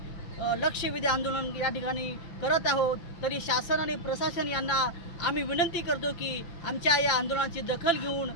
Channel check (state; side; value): late; right; 5.8 ms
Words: लक्षवेधी आंदोलन या ठिकाणी करत आहोत। तरी शासन आणि प्रशासन यांना आम्ही विनंती करतो की आमच्या या आंदोलनाची दखल घेऊन